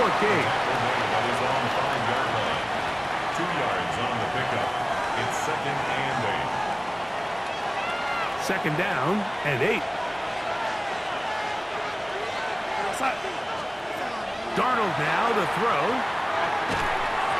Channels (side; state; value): both; identical; correlation 1.00